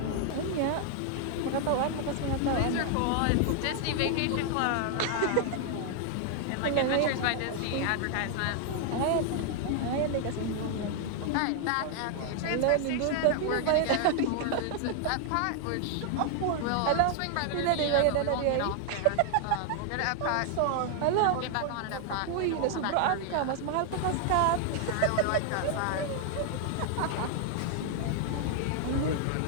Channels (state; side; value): different; both; correlation 0.00